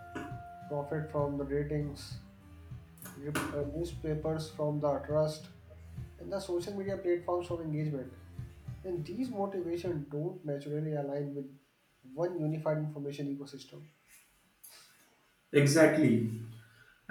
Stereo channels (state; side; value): identical; both; correlation 1.00